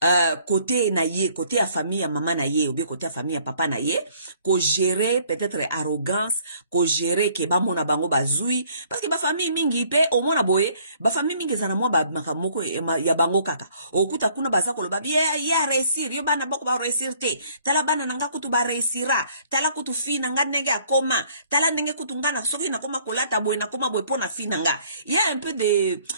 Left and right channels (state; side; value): inverted; both; correlation -0.61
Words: côté naye, côté à famille à maman naye ou bien côté à famille à papa naye, ko gérer peut-être arrogance, ko gérer ke ba mona bango bazui parce que ba famille mingi pe au mona boye, ba famille mingi zana moi ba makamoko ya bango kaka. Okuta kuna baza ko lo ba ya réussir, yo bana bako ba réussir te. Tala bana nanga kutu ba réussira, tala kutu fi nanga nenge akoma, tala nenge kutu ngana soki na koma kolata boye na koma boye pona fi nanga. Il y a un peu de